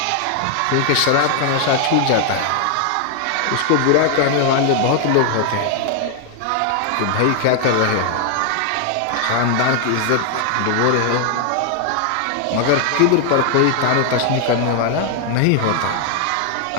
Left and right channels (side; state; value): both; different; correlation 0.00